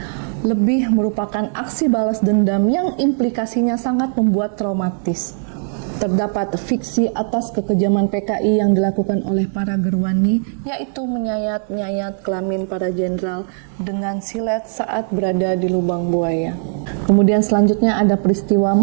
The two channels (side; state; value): left; silent; 67 dB below the other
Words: Lebih merupakan aksi balas dendam yang implikasinya sangat membuat traumatis. Terdapat fiksi atas kekejaman PKI yang dilakukan oleh para gerwani, yaitu menyayat-nyayat kelamin para jenderal dengan silet saat berada di lubang buaya. Kemudian selanjutnya ada peristiwa